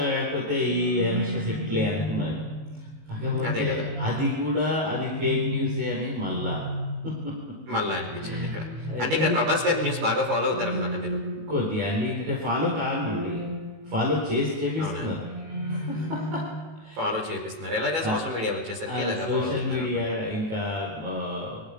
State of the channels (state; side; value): late; left; 19 ms